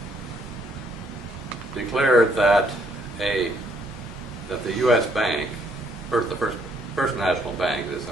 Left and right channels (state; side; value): normal; both; correlation 0.68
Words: declared that the U.S. Bank, the first national bank, as it's